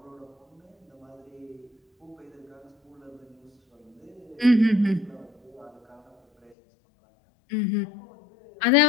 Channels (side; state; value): right; drops out; at 6.6 s